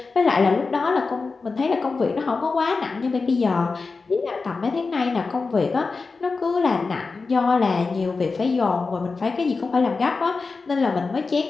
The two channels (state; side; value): quieter; right; 4.2 dB